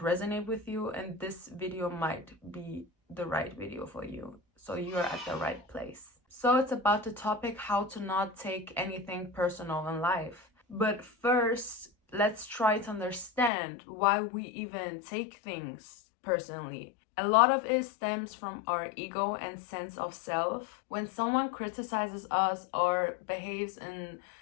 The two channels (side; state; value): right; drops out; at 13.5 s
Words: resonate with you, and this video might be the right video for you. So you are at the right place. So it's about the topic how to not take anything personal in life. But first, let's try to understand why we even take things personally. A lot of it stems from our ego and sense of self. When someone criticizes us or behaves in